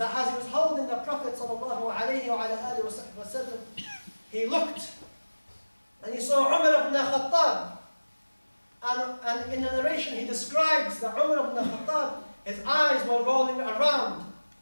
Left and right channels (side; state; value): both; inverted; correlation -1.00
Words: as he was holding the Prophet ﷺ, he looked and he saw Umar ibn Khattab. And in the narration he describes that Umar ibn Khattab, his eyes were rolling around